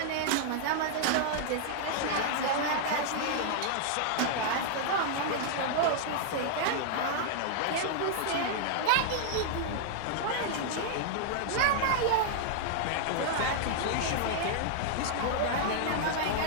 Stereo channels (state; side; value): different; both; correlation -0.01